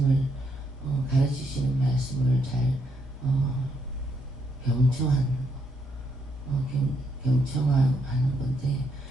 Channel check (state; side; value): normal; both; correlation 0.75